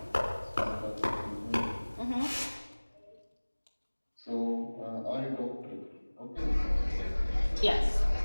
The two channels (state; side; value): inverted; both; correlation -1.00